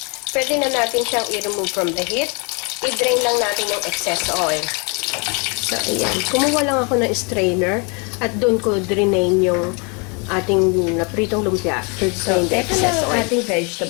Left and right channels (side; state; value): right; quieter; 33.0 dB